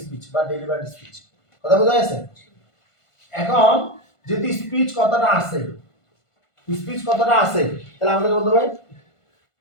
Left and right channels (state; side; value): late; right; 1.5 ms